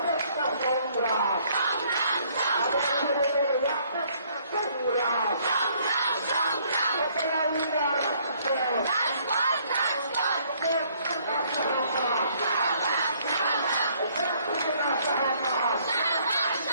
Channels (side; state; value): both; inverted; correlation -0.63